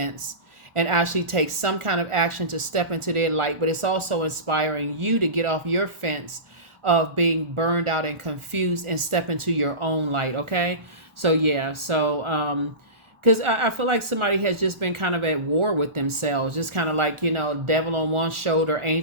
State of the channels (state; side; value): late; left; 1.4 ms